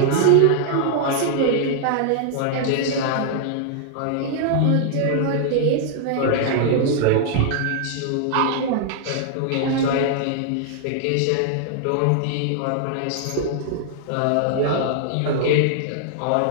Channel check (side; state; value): both; different; correlation -0.01